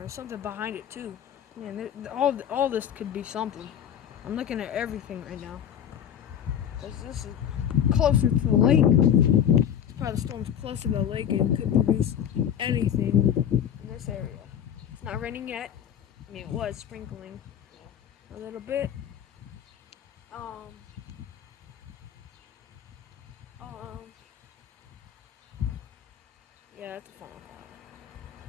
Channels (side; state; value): right; quieter; 9.2 dB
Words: something behind it too. Man, all this could be something. I'm looking at everything right now. This is closer to the lake. This part of the storm's closer to the lake and could produce anything in this area. It's not raining yet. I mean, it was sprinkling a little bit. Yeah, that's a funnel cloud.